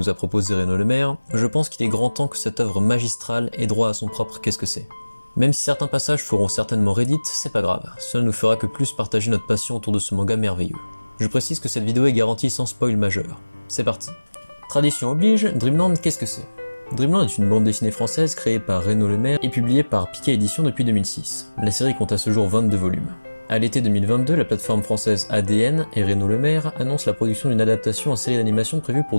a proposé Renaud Lemaire, je pense qu'il est grand temps que cette œuvre magistrale ait droit à son propre qu'est-ce que c'est. Même si certains passages feront certainement Reddit, c'est pas grave, cela nous fera que plus partager notre passion autour de ce manga merveilleux. Je précise que cette vidéo est garantie sans spoil majeur. C'est parti. Tradition oblige, Dreamland qu'est-ce que c'est? Dreamland est une bande dessinée française créée par Renaud Lemaire et publiée par Piquet Éditions depuis 2006. La série compte à ce jour 22 volumes. À l'été 2022, la plateforme française ADN et Renaud Lemaire annoncent la production d'une adaptation en série d'animation prévue pour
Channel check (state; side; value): inverted; both; correlation -1.00